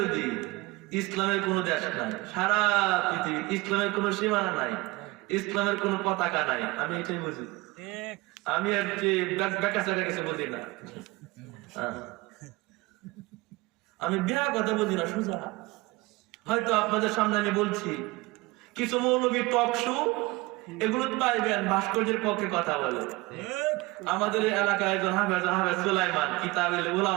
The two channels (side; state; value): left; quieter; 22.3 dB